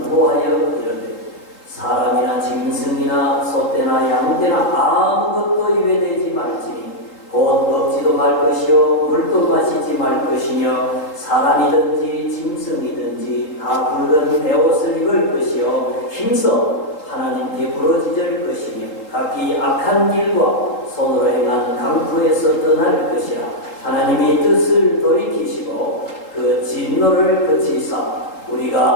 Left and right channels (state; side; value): late; right; 3.8 ms